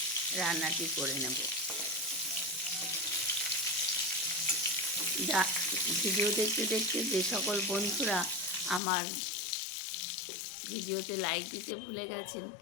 রান্নাটি করে নেব। ভিডিও দেখতে দেখতে যে সকল বন্ধুরা আমার ভিডিওতে লাইক দিতে ভুলে গেছেন,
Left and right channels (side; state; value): right; drops out; at 8.8 s